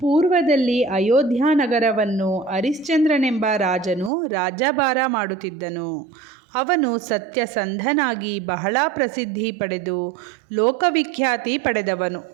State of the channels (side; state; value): left; drops out; at 4.1 s